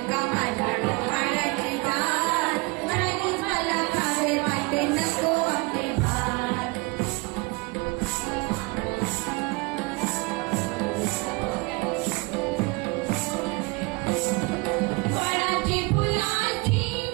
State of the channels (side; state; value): left; quieter; 26.8 dB